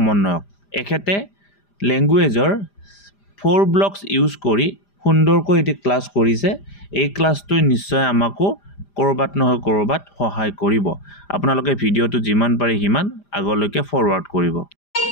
এখেতে লেংগুৱেজৰ 4 ব্লকছ ইউজ কৰি সুন্দৰকৈ এটি ক্লাছ কৰিছে এই ক্লাছটো নিশ্চয় আমাকো কৰবাত নহয় কৰবাত সহায় কৰিব আপোনালোকে ভিডিঅ'টো যিমান পাৰি হিমান আগলৈকে ফৰৱাৰ্ড কৰিব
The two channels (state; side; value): late; right; 5.0 ms